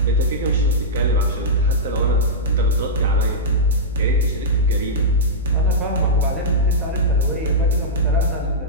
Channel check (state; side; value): normal; both; correlation -0.09